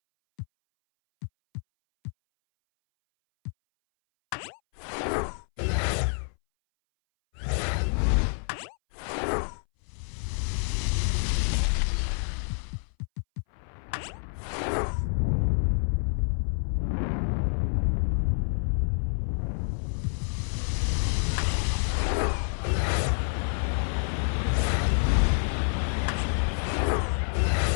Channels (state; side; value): silent; right; 59 dB below the other